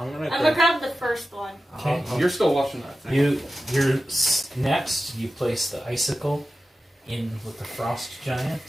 gonna. I'm gonna grab the first one. okay. You're still watching that thing. Next, you place the icicle in with the frost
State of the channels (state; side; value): normal; both; correlation 0.93